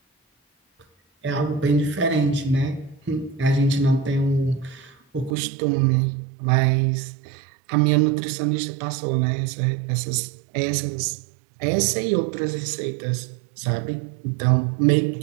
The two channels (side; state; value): left; drops out; at 5.4 s